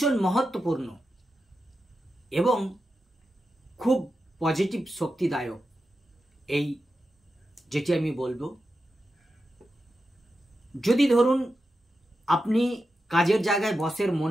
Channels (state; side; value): normal; both; correlation 0.90